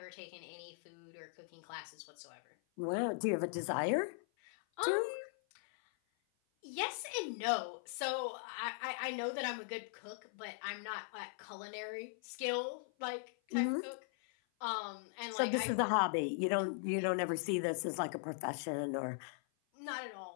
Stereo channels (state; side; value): silent; right; 51 dB below the other